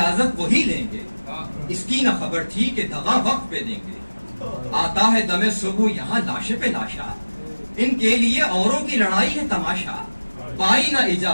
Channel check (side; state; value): both; inverted; correlation -1.00